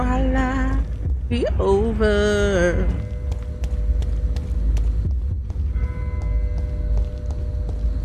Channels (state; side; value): identical; both; correlation 1.00